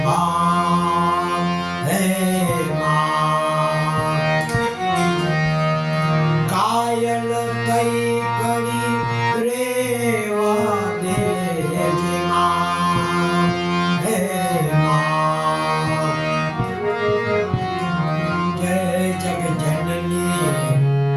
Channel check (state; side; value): identical; both; correlation 1.00